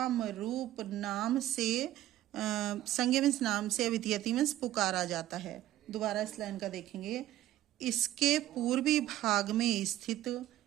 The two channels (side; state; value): left; quieter; 13.9 dB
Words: रूप नाम से संज्ञा मीन्स नाम से, अभिधीयते मीन्स पुकारा जाता है। दोबारा इस लाइन का देखेंगे। इसके पूर्वी भाग में स्थित